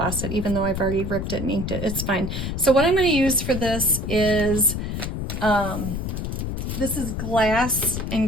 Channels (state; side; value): noise; left; rumble, 4 dB below the sound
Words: it even though I've already ripped it and inked it. It's fine. So what I'm going to use for this is glass